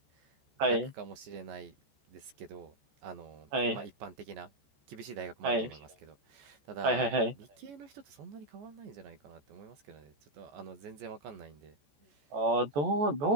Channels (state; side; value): late; left; 14 ms